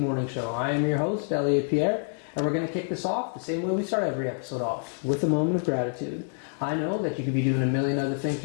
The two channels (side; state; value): right; silent; 60 dB below the other